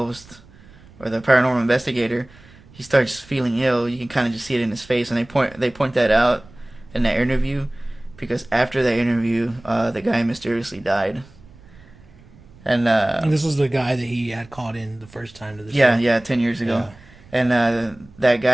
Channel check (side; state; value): right; noise; rumble, 24 dB below the sound